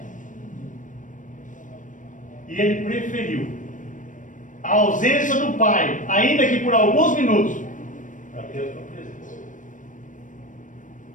E ele preferiu a ausência do Pai, ainda que por alguns minutos, para ter a sua presença.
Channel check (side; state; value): right; late; 0.37 ms